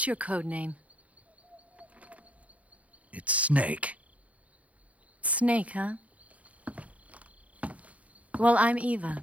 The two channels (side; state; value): left; late; 0.067 ms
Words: your code name? It's Snake. Snake, huh? Well, I'm Eva.